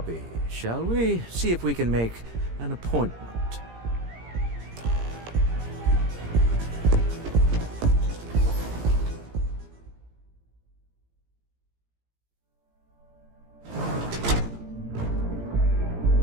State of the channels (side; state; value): left; late; 17 ms